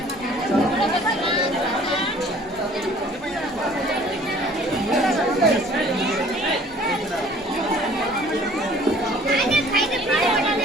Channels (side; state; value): both; normal; correlation 0.53